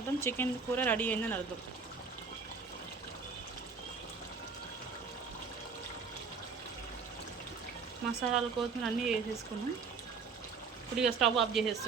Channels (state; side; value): quieter; left; 5.2 dB